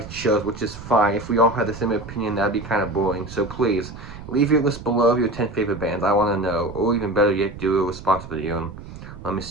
chose, which is fine. If we all had the same opinion, that'd be kind of boring. So please, leave your list below of your 10 favorite bands. I want to know. Or even better yet, do a response video and let me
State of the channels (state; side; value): noise; right; rumble, 14 dB below the sound